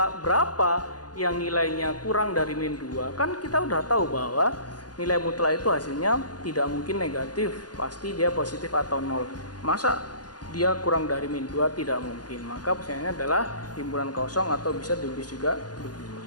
berapa yang nilainya kurang dari min 2? Kan kita udah tahu bahwa nilai mutlak itu hasilnya tidak mungkin negatif, pasti dia positif atau 0. Masa dia kurang dari min 2? Tidak mungkin. Maka pertanyaannya adalah himpunan kosong, atau bisa ditulis juga begini.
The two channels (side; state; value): right; late; 0.69 ms